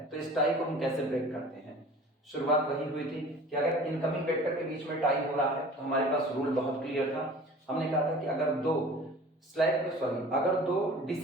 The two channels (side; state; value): both; normal; correlation 0.43